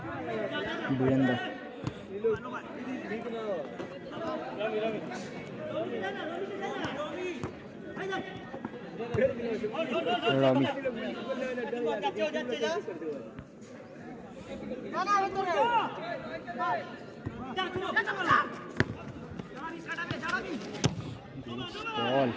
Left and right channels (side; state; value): both; identical; correlation 1.00